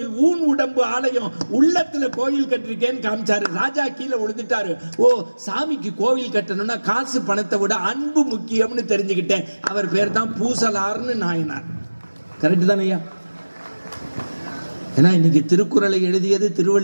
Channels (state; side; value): inverted; both; correlation -1.00